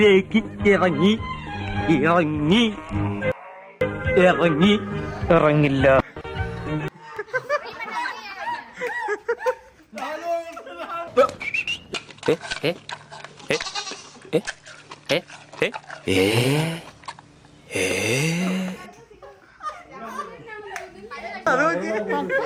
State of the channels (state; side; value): identical; both; correlation 1.00